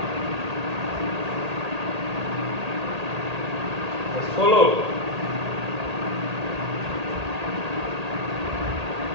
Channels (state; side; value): late; left; 1.8 ms